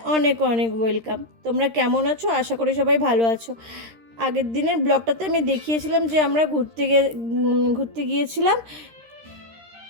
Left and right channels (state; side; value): late; left; 13 ms